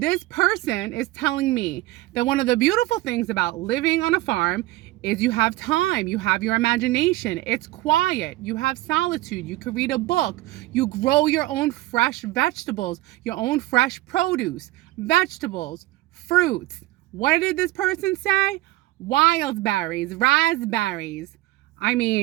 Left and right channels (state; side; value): quieter; left; 17.8 dB